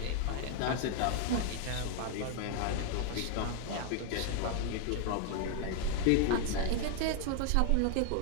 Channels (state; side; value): different; both; correlation 0.00